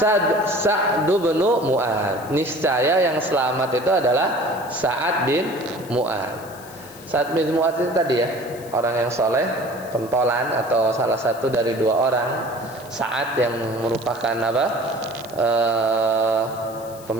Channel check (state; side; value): noise; left; hiss, 20 dB below the sound